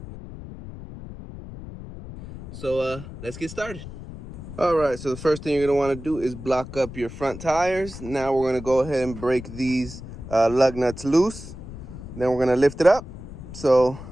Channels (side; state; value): left; noise; rumble, 12 dB below the sound